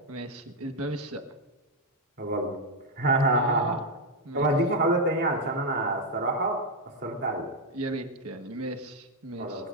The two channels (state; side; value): normal; both; correlation 0.01